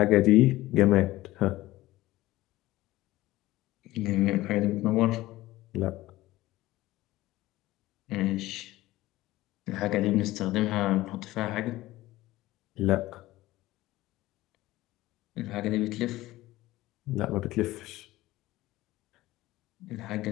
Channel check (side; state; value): right; quieter; 17.3 dB